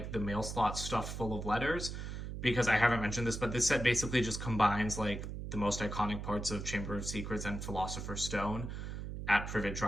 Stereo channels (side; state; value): right; noise; hum, 6 dB below the sound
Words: the mail slot stuffed full of letters. Because I haven't mentioned this, but this set basically just combines like the most iconic parts of Chamber of Secrets and Philosopher's Stone at Privet